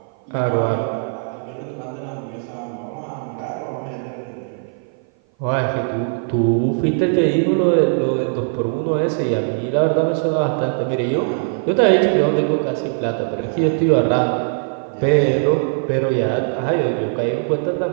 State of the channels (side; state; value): left; silent; 57 dB below the other